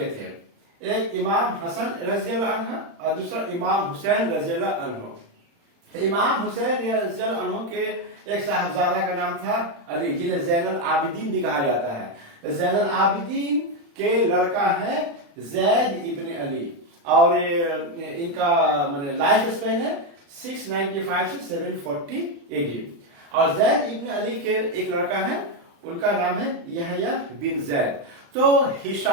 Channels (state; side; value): late; left; 35 ms